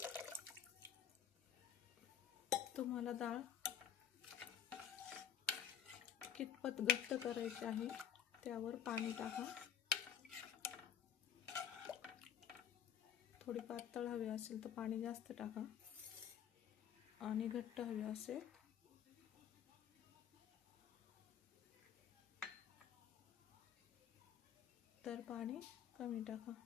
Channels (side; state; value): right; quieter; 9.1 dB